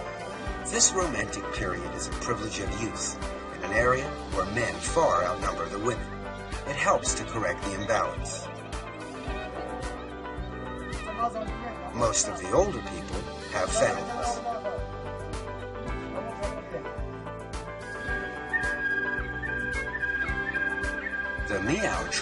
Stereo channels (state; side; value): identical; both; correlation 1.00